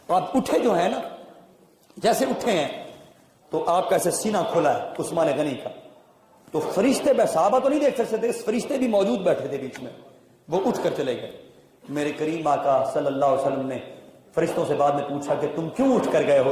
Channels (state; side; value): identical; both; correlation 1.00